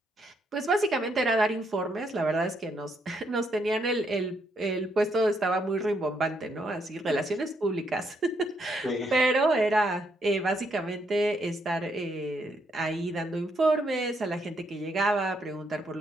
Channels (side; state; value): both; normal; correlation 0.75